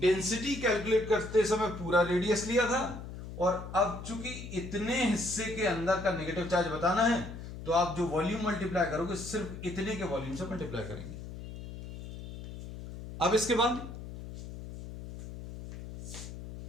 डेंसिटी कैलकुलेट करते समय पूरा रेडियस लिया था, और अब चूंकि इतने हिस्से के अंदर का नेगेटिव चार्ज बताना है, तो आप जो वॉल्यूम मल्टीप्लाई करोगे सिर्फ इतने के वॉल्यूम से मल्टीप्लाई करेंगे। अब इसके बाद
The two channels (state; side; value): noise; left; hum, 11 dB below the sound